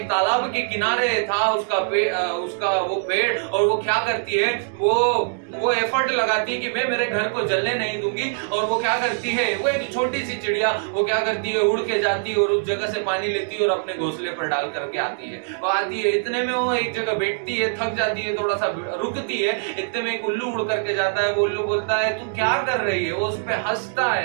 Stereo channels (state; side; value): silent; left; digital silence